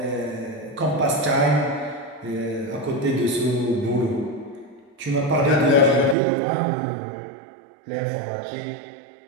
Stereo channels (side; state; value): left; drops out; at 6.2 s